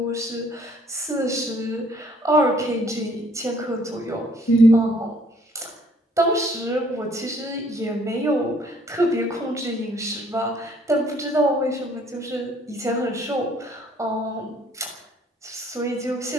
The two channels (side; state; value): both; normal; correlation 0.61